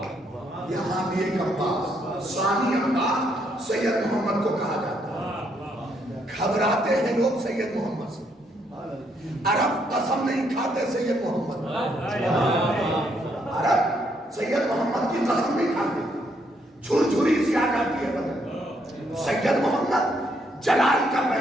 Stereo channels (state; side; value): normal; both; correlation 0.73